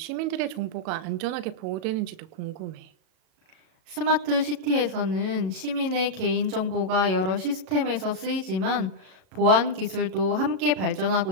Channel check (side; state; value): left; late; 37 ms